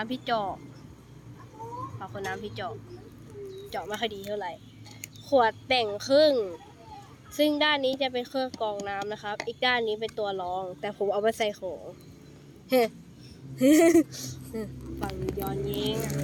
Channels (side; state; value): both; identical; correlation 1.00